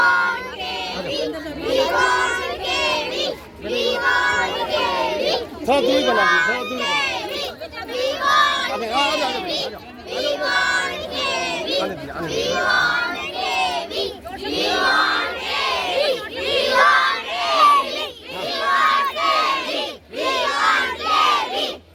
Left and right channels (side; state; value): both; identical; correlation 1.00